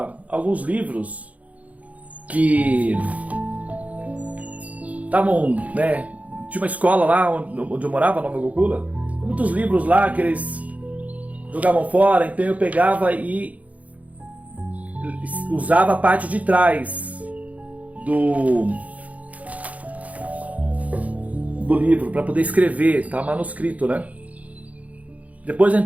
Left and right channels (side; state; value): left; late; 0.070 ms